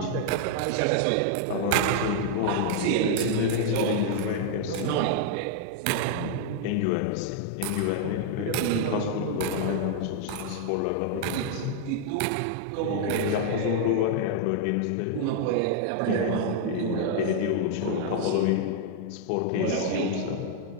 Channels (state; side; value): different; both; correlation 0.00